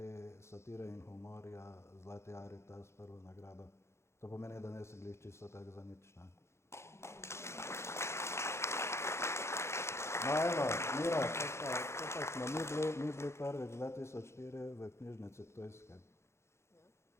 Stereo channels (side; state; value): right; late; 0.13 ms